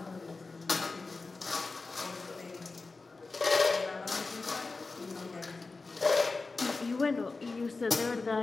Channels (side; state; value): right; quieter; 3.8 dB